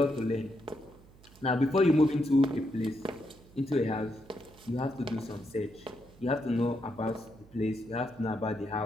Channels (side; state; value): right; noise; hum, 24 dB below the sound